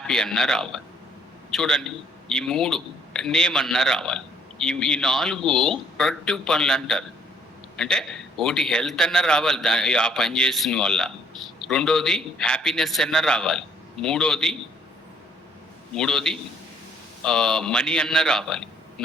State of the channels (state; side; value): normal; both; correlation 0.63